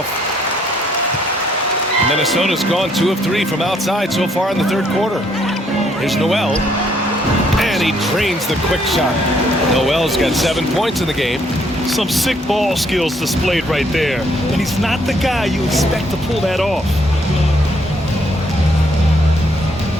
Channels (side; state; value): both; normal; correlation 0.69